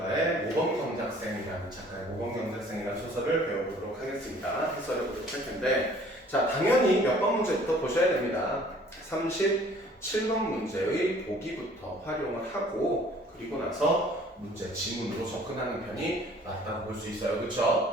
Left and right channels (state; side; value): normal; both; correlation 0.54